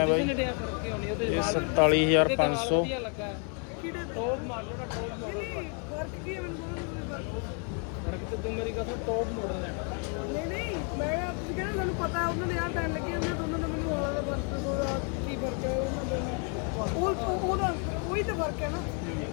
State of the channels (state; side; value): quieter; right; 38.5 dB